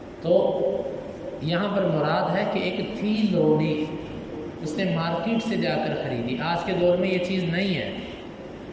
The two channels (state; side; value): identical; both; correlation 1.00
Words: تو یہاں پر مراد ہے کہ ایک تھی لونڈی، اس نے مارکیٹ سے جا کر خریدی۔ آج کے دور میں یہ چیز نہیں ہے،